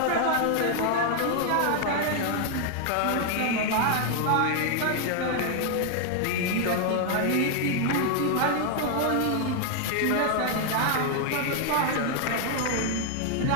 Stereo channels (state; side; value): different; both; correlation 0.00